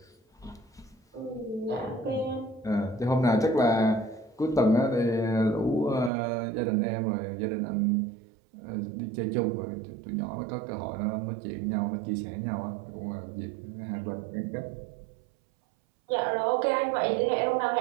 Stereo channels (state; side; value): drops out; left; at 6.1 s